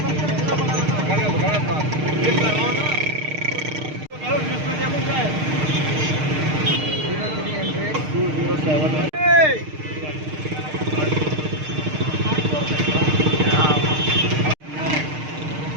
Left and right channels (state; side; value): late; left; 6.5 ms